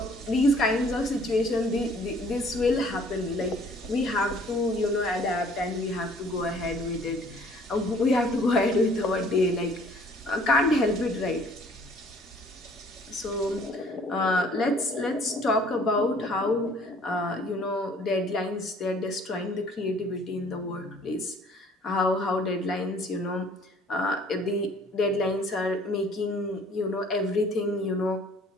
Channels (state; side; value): normal; both; correlation 0.56